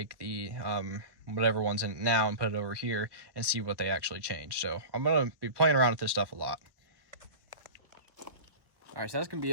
the whatever one's in it now and put it over here and see what they actually changed. So I'm gonna be playing around with this stuff a lot. Alright, so that's going to be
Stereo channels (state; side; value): late; left; 1.2 ms